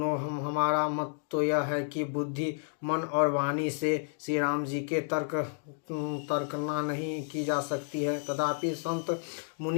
हमारा मत तो यह है कि बुद्धि मन और वाणी से श्री राम जी के तर्कना नहीं की जा सकती है। तथापि संत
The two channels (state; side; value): silent; right; digital silence